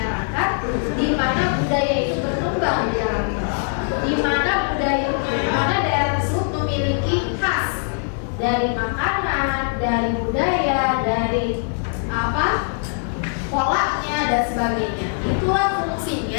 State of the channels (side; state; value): right; silent; 65 dB below the other